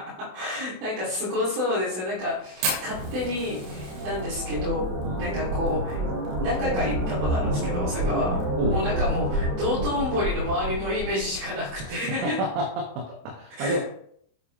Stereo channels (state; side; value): late; left; 27 ms